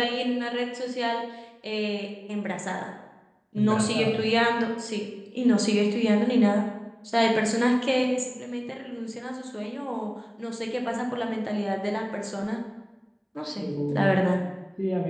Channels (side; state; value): both; identical; correlation 1.00